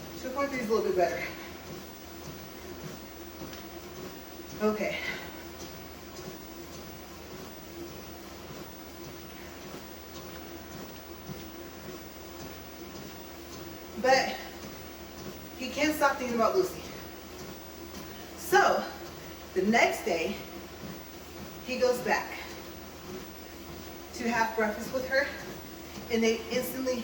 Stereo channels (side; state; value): both; identical; correlation 1.00